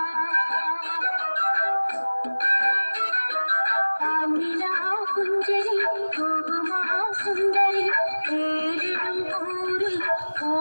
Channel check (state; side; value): inverted; both; correlation -1.00